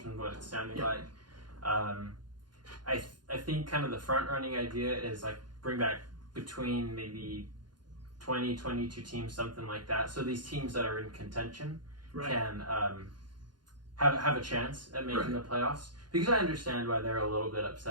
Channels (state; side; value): late; left; 0.71 ms